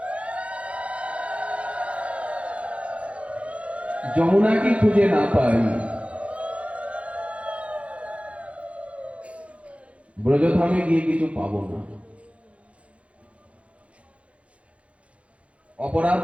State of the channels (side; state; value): left; late; 0.062 ms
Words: যমুনাকে খুঁজে না পাই, ব্রজধামে গিয়ে কিছু পাবো না। অপরাধ